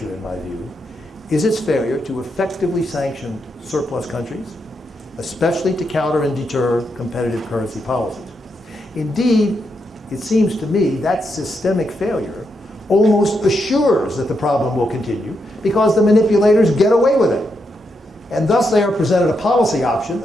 in my view, is its failure to effectively sanction surplus countries, especially to counter and deter competitive currency policies. Indeed, it seems to me that systemic failure almost assures that the problem will continue because the manipulators get away with it. And thus they are presented a policy option,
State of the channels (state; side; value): normal; both; correlation 0.82